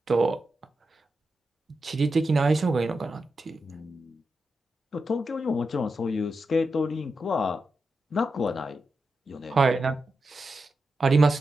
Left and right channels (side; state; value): both; normal; correlation 0.89